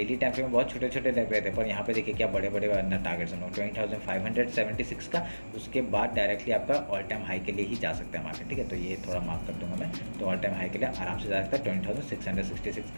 टाइम फ्रेम में बहुत छोटे छोटे लग रहे थे, पर यहाँ पे देखिए क्या बड़े बड़े टारगेट्स हैं। 20,576 का, उसके बाद डायरेक्टली आपका ऑल टाइम हाई के लिए ही जा सकता है मार्केट, ठीक है। तो ये थोड़ा मार्क कर दूंगा मैं, तो ऑल टाइम हाई के लिए आराम से जा सकता है 20,666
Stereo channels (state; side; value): inverted; both; correlation -1.00